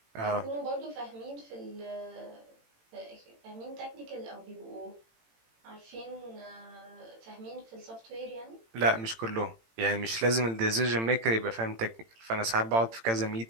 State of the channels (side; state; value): left; late; 18 ms